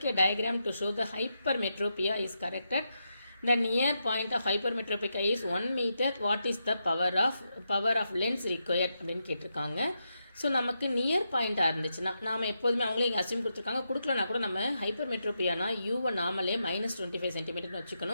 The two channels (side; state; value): both; inverted; correlation -0.85